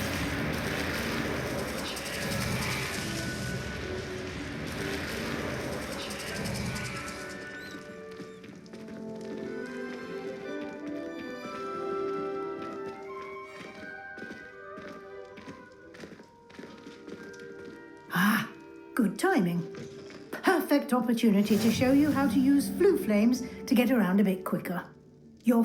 Ah, good timing. Perfect opportunity to show you how to use flue flames to get around a bit quicker. Your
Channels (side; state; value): both; identical; correlation 1.00